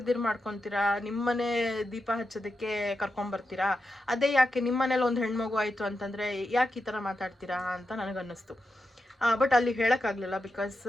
ಮಾಡ್ಕೊತೀರಾ, ನಿಮ್ಮನೆ ದೀಪ ಹಚ್ಚೋದಕ್ಕೆ ಕರ್ಕೊಂಬರ್ತೀರಾ. ಅದೇ ಯಾಕೆ ನಿಮ್ಮನೇಲಿ ಒಂದು ಹೆಣ್ಮಗು ಆಯಿತು ಅಂತಂದರೆ ಯಾಕೆ ಈ ಥರ ಮಾತಾಡ್ತೀರಾ ಅಂತ ನನಗನ್ನಿಸ್ತು. ಬಟ್ ಅಲ್ಲಿ ಹೇಳೋಕ್ಕಾಗಲಿಲ್ಲ, ಬಿಕಾಸ್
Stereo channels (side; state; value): both; normal; correlation 0.88